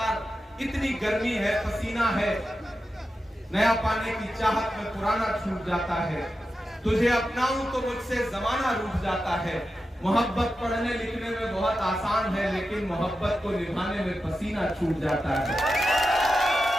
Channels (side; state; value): both; normal; correlation 0.91